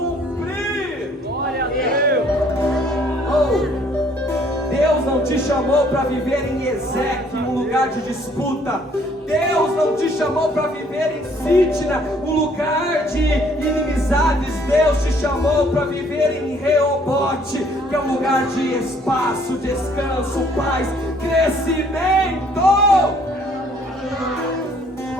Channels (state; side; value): normal; both; correlation 0.61